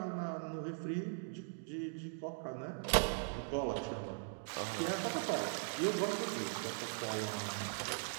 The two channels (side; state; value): left; silent; digital silence